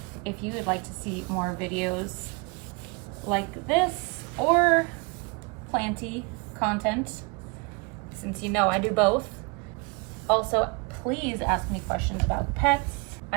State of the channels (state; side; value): quieter; left; 31.2 dB